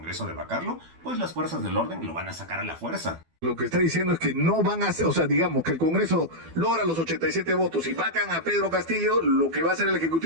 de vacarlo, pues las fuerzas del orden lo van a sacar a la fuerza. Lo que está diciendo es que no van a hacer, o sea, digamos que el Congreso logra los 87 votos y vacan a Pedro Castillo, lo que va a hacer el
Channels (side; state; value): left; late; 12 ms